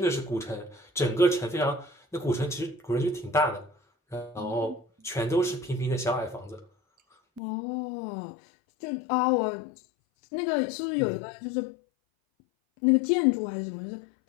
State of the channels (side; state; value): right; drops out; at 7.4 s